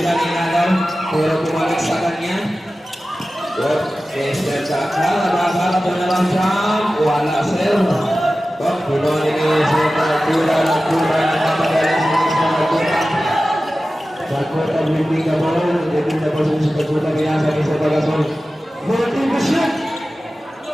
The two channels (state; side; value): normal; both; correlation 0.95